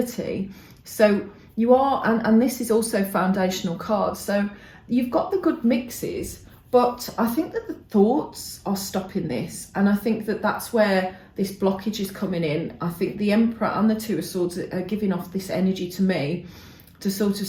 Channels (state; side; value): identical; both; correlation 1.00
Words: So you are, and this is also foundational cards. So you've got the good mixes, but I think that the thoughts are stopping this. And I think that that's where this blockage is coming in. I think the Emperor and the Two of Swords are giving off this energy to me to sort of